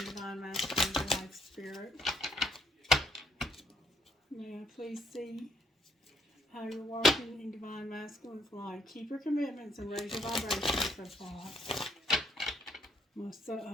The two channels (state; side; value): normal; both; correlation 0.69